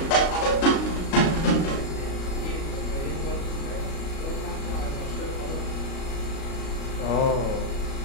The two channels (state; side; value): late; right; 37 ms